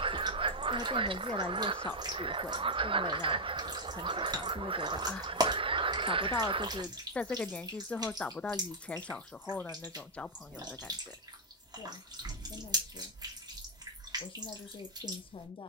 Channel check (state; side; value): normal; both; correlation -0.03